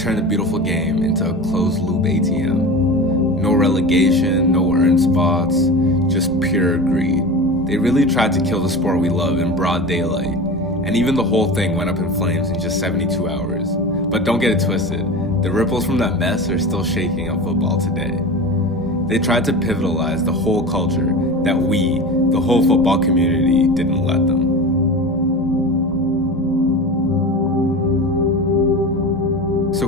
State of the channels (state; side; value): normal; both; correlation 0.30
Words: the beautiful game into a closed loop ATM. No relegation, no earned spots, just pure greed. They really tried to kill the sport we love in broad daylight, and even the whole thing went up in flames in just 72 hours. But don't get it twisted, the ripples from that mess are still shaking up football today. They tried to pivotalize the whole culture that we, the whole football community, didn't let them.